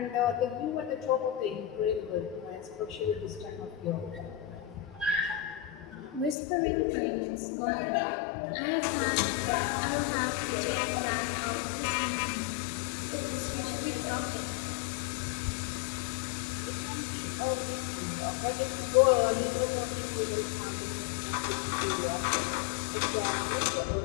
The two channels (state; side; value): drops out; right; at 6.4 s